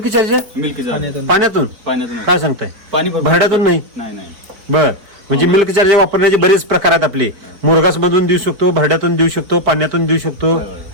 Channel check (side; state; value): left; late; 4.1 ms